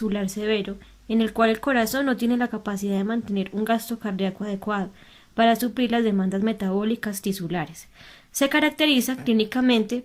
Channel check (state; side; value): identical; both; correlation 1.00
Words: severo en el cual el corazón no tiene la capacidad de mantener un gasto cardíaco adecuado para suplir las demandas metabólicas tisulares. Se caracteriza clínicamente